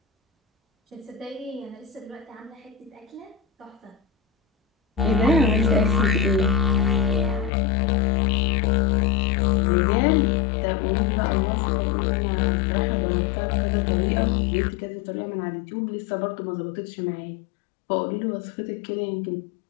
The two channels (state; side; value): drops out; right; at 7.5 s